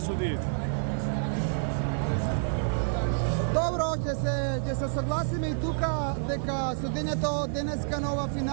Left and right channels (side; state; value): left; silent; digital silence